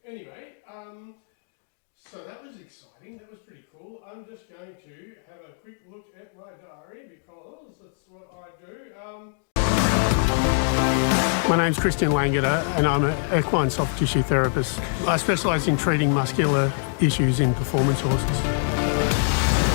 Anyway, so that was exciting. That was pretty cool. I'm just going to have a quick look at my diary because that's what I do. My name's Christian Langeder and I'm an equine soft tissue therapist. I specialise in treating muscular issues in performance horses.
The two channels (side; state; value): right; silent; digital silence